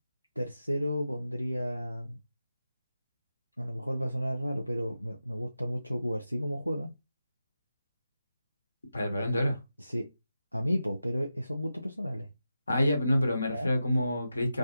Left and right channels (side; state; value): both; inverted; correlation -0.90